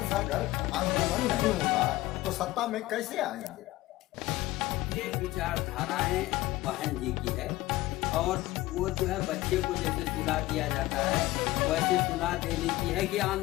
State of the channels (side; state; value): right; quieter; 18.1 dB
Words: अगर आंदोलन नहीं होगा तो सत्ता में कैसे आएंगे? ये विचारधाराएं बहन जी की है और वो जो है बच्चे को जैसे सुला दिया जाता है वैसे सुला देने की है कि